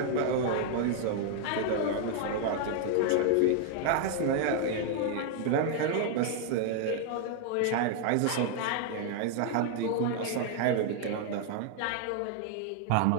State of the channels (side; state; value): both; different; correlation 0.00